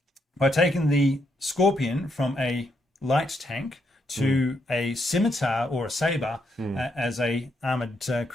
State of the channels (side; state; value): both; normal; correlation 0.77